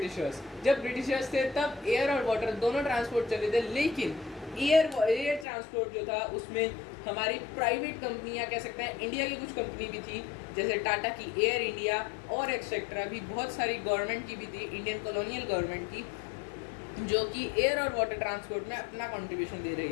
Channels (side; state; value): right; drops out; at 5.5 s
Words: जब ब्रिटिशर्स थे तब एयर और वाटर दोनों ट्रांसपोर्ट चले थे, लेकिन एयर ट्रांसपोर्ट जो था उसमें हमारी प्राइवेट कंपनियां कह सकते हैं, इंडिया की कुछ कंपनी भी थी, जैसे टाटा की एयर इंडिया और एक्सेट्रा भी, बहुत सारी गवर्नमेंट की भी थी, इंडियन कॉलोनियल गवर्नमेंट की, जो कि एयर और वाटर ट्रांसपोर्ट में अपना कंट्रीब्यूशन दे रही